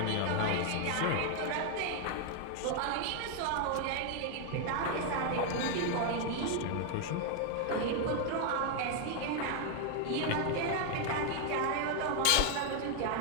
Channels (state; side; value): different; both; correlation 0.00